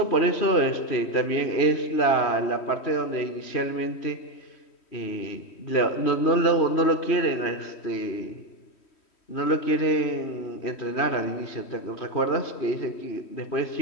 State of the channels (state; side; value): late; right; 3.1 ms